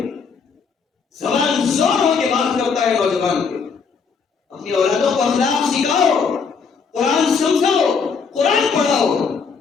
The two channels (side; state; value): right; quieter; 5.5 dB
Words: زبان زور ہو کے بات کرتا ہے نوجوان کے. اپنی اولادوں کو اخلاق سکھاؤ، قرآن سمجھاؤ، قرآن پڑھاؤ.